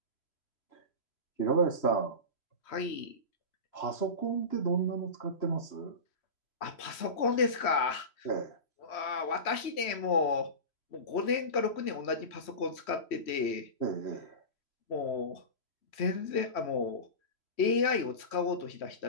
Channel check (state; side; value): late; right; 3.1 ms